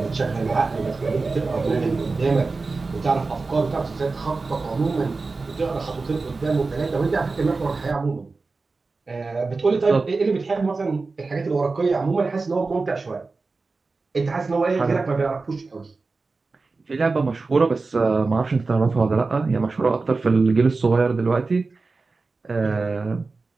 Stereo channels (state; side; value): quieter; left; 3.9 dB